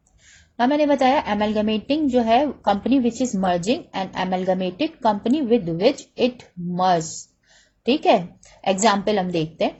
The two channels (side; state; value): both; identical; correlation 1.00